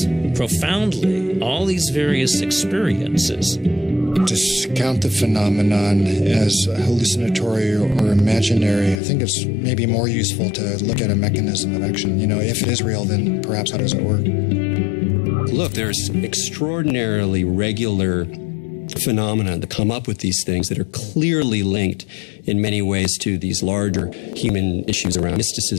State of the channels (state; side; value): drops out; right; at 9.0 s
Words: profoundly all these various experiences. Discount the phenomenon as hallucinatory or imaginary. I think it's maybe more useful to look at a mechanism of action. If it is real, then perhaps how does it work? Look, there's extraordinarily regular phenomena that come up with these things that are clearly linked in many ways to these larger human issues around